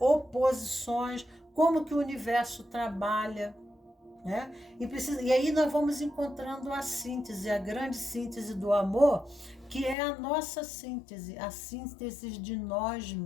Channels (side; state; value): right; drops out; at 10.0 s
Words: como que o universo trabalha, né? E aí nós vamos encontrando a síntese, a grande síntese do amor, que é a nossa síntese, a síntese de nós